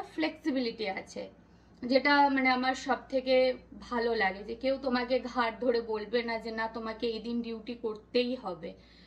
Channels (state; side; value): identical; both; correlation 1.00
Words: ফ্লেক্সিবিলিটি আছে, যেটা মানে আমার সব থেকে ভালো লাগে, যে কেউ তোমাকে ঘাট ধরে বলবে না যে না তোমাকে এই দিন ডিউটি করতেই হবে,